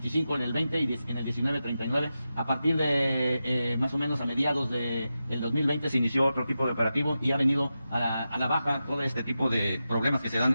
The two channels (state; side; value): inverted; both; correlation -0.91